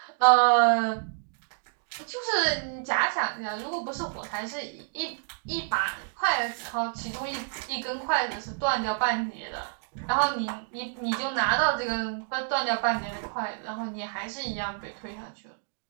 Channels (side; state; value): left; silent; 59 dB below the other